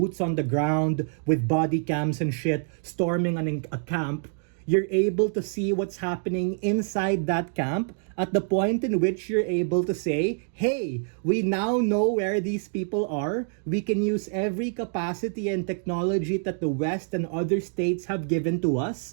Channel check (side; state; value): left; silent; 61 dB below the other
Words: on the ground with body cams and shit storming a camp. You're able to see what's happening inside that camp at the point in which you're able to say, hey, we now know where these people are. We can use every capacity and technology that the West and other states have given to